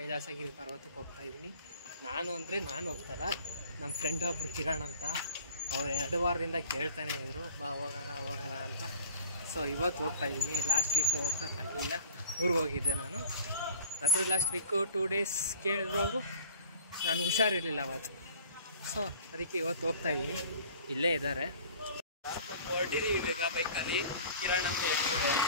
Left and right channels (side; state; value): both; inverted; correlation -0.46